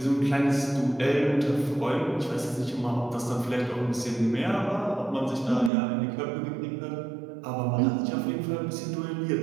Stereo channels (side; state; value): left; drops out; at 5.7 s